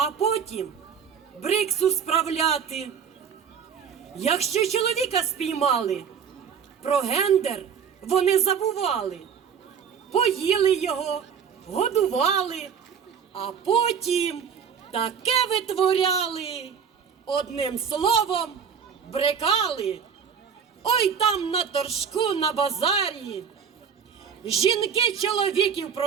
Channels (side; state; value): left; quieter; 7.1 dB